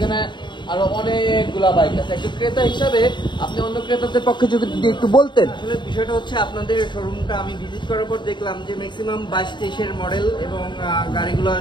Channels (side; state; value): right; late; 0.22 ms